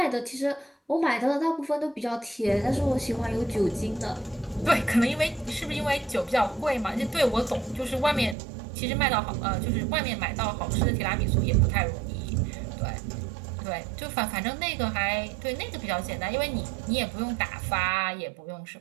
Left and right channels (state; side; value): drops out; left; at 8.3 s